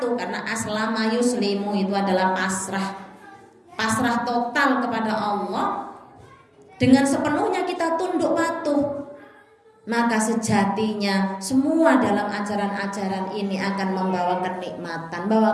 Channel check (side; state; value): both; identical; correlation 1.00